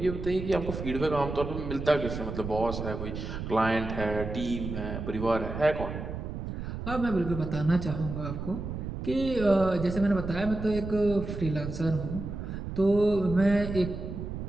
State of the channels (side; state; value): right; noise; rumble, 6 dB below the sound